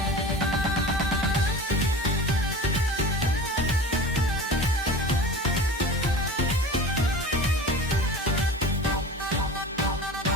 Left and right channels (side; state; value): both; normal; correlation 0.35